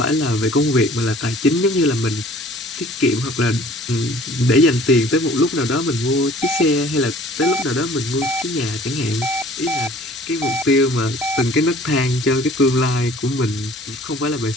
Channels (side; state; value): both; normal; correlation 0.51